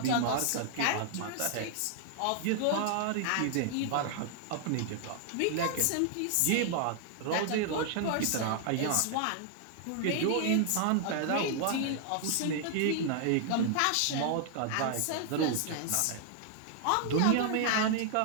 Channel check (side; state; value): both; different; correlation -0.01